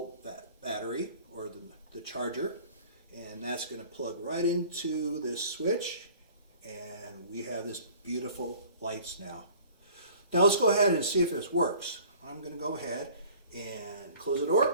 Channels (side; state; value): both; inverted; correlation -0.49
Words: battery, or the charger. And that's going to plug right into this switch, and we have this beautiful lights now. Now let's go ahead and see if this works. I'm going to go ahead and close the